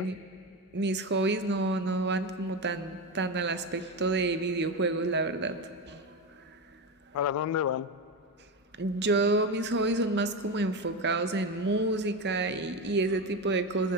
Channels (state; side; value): normal; both; correlation 0.17